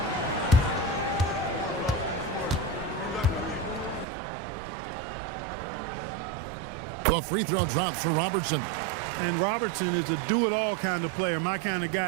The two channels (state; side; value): drops out; left; at 4.0 s